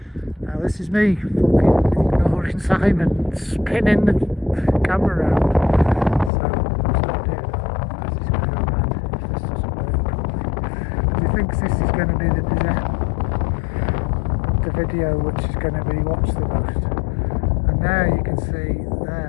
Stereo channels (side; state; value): right; drops out; at 6.3 s